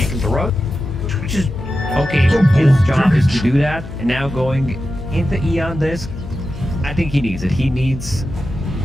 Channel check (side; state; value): left; noise; hum, 11 dB below the sound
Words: the road, which is Okay, his job is to do that, and now going into Eon Disc, I think he needs it. He needs